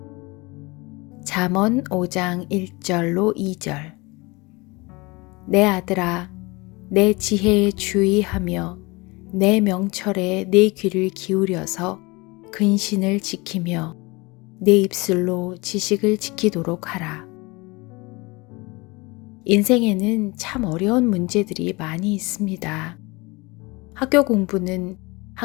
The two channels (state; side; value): quieter; right; 24.8 dB